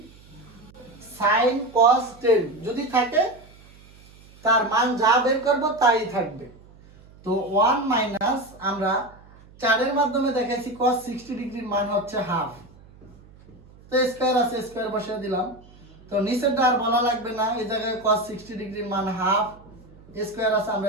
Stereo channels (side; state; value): right; noise; hum, 24 dB below the sound